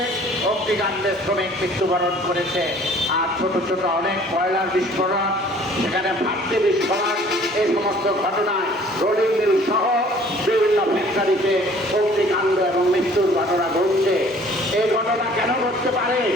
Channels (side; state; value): both; normal; correlation 0.53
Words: অগ্নিকাণ্ডে শ্রমিক মৃত্যুবরণ করেছে। আর ছোট ছোট অনেক কয়লার বিস্ফোরণ, সেখানে ভাট্টি বিস্ফোরণ, এই সমস্ত ঘটনায় রোলিং মিল সহ বিভিন্ন ফ্যাক্টরিতে অগ্নিকাণ্ড এবং মৃত্যুর ঘটনা ঘটছে। এই ঘটনা কেন ঘটতে পারে?